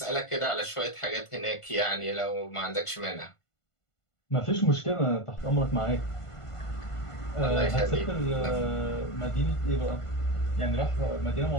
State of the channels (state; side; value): late; right; 1.5 ms